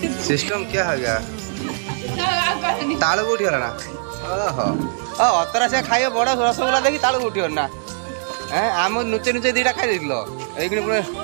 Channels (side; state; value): left; silent; digital silence